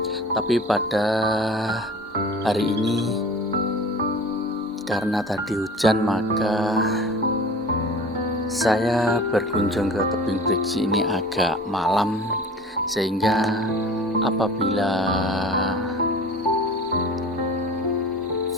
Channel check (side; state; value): both; normal; correlation 0.41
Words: Tapi pada hari ini karena tadi hujan, maka saya berkunjung ke Tebing Brigsi ini agak malam, sehingga apabila